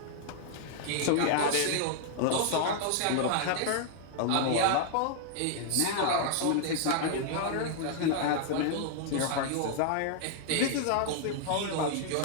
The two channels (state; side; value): different; both; correlation 0.00